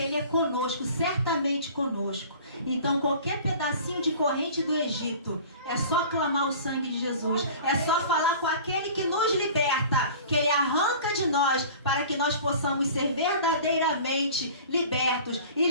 Ele é conosco, certamente conosco. Então qualquer pedacinho de corrente do Egito, é só clamar o sangue de Jesus, é só falar com aquele que nos liberta, que Ele arranca de nós, para que nós possamos ser verdadeiramente libertos. E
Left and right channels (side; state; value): both; inverted; correlation -0.43